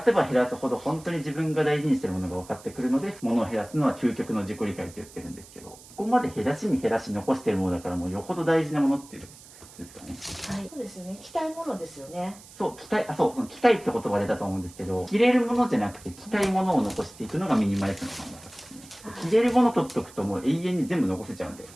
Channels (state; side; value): noise; right; hiss, 20 dB below the sound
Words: せば減らすほど本当に自分が大事にしてるものが分かってくるので、物を減らすのは究極の自己理解って言ってるんですけど、ここまで減らしに減らし残してるものだからもうよほど大事なものっていうですかね。はい。そうですね。着たいものですよね。そう着たい、その着たいって言葉出たと思うんですけど、着れるものじゃなくて着たいものを残していくのがミニマリストの考え方ですね。着れるもの取っとくともう永遠に全部残せちゃうんで、